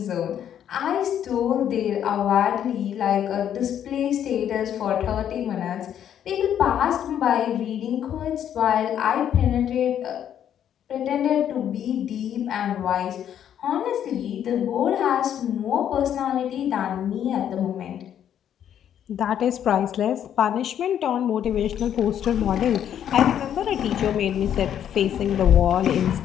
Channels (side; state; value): right; quieter; 9.8 dB